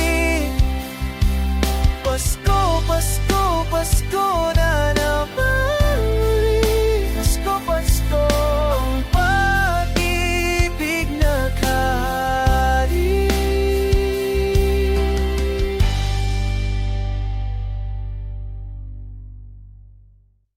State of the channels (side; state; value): both; identical; correlation 1.00